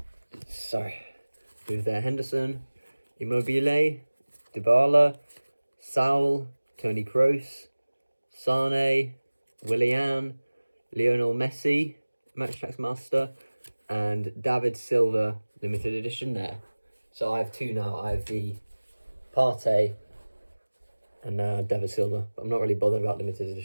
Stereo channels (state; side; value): inverted; both; correlation -1.00